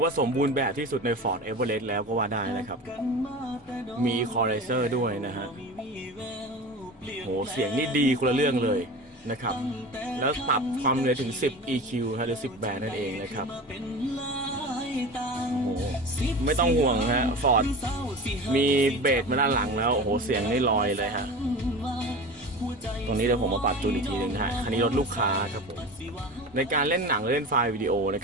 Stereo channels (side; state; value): both; normal; correlation 0.32